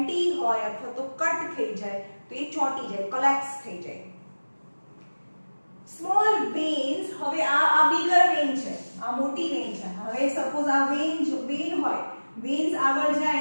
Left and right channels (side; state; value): both; inverted; correlation -1.00